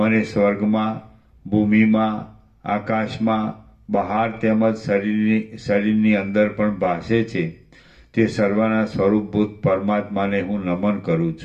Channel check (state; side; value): identical; both; correlation 1.00